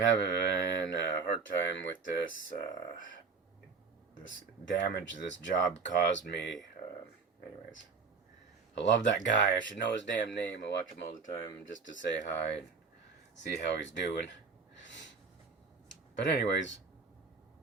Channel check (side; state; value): left; quieter; 4.9 dB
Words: a hard time with this this damage this job caused me. Anyways, I love that guy. I should know his damn name. I watch him all the time just to say hi and see how he's doing. But anyways,